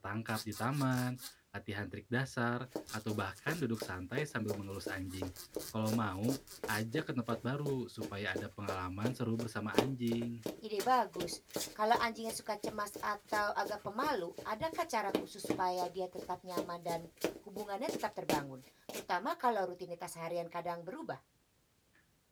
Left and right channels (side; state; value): both; identical; correlation 1.00